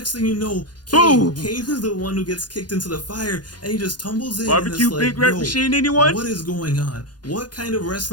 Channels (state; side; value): late; right; 0.70 ms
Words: thing you know, Boom! Kane is the one who gets kicked into the fire, and he just tumbles in. Barbecue and it's like, Big Red yo, Machine, anyone? what is going on? What kind of